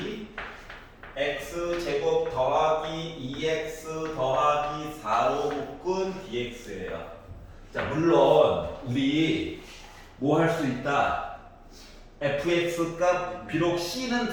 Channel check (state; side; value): identical; both; correlation 1.00